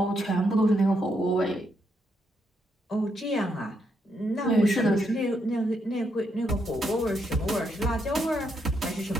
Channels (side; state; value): both; normal; correlation 0.78